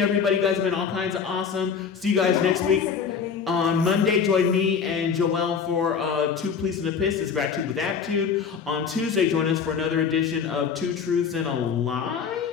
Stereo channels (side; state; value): right; quieter; 6.5 dB